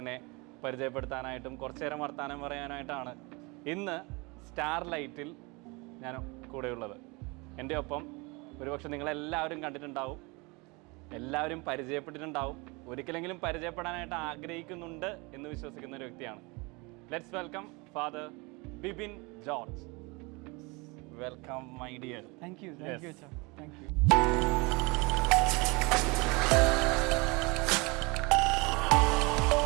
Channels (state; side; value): quieter; left; 27.1 dB